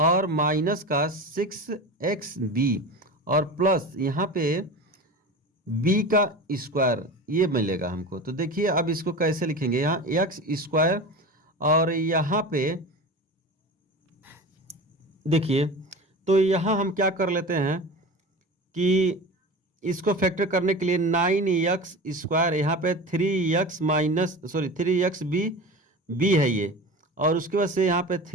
माइनस का 6xb और प्लस यहाँ पे b का स्क्वायर ये मिलेगा हमको। तो देखिए अब इसको कैसे लिखेंगे, यहाँ x² और यहाँ पे देखिए, तो यहाँ हम क्या कर लेते हैं कि इसको फैक्टर करने के लिए 9x², यहाँ पे 3xb है ये, और उसके बाद से यहाँ पे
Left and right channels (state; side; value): normal; both; correlation 0.31